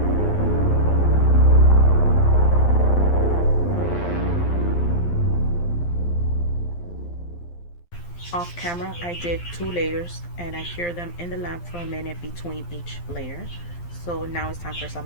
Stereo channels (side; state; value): right; late; 12 ms